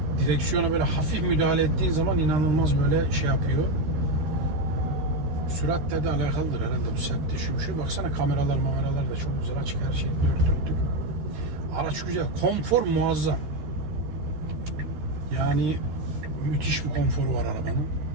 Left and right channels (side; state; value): left; late; 13 ms